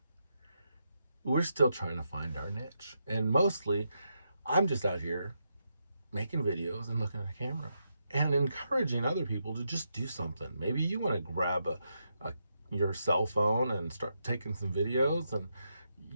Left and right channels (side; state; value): both; inverted; correlation -0.83